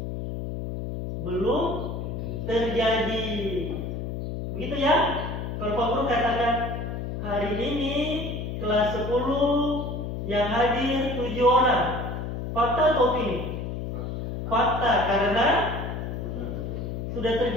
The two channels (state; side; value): noise; left; hum, 5 dB below the sound